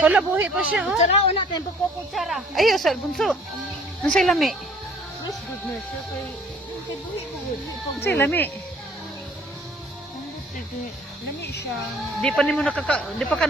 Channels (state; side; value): normal; both; correlation 0.55